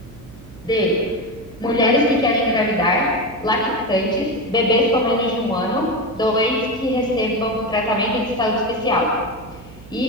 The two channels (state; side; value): noise; right; hum, 20 dB below the sound